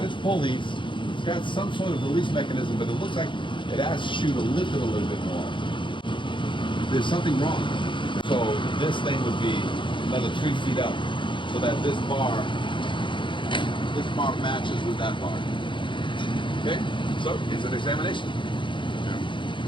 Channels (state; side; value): late; right; 0.24 ms